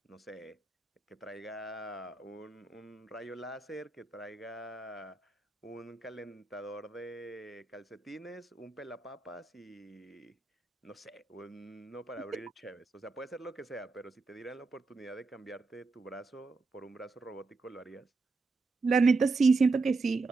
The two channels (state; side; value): quieter; left; 3.9 dB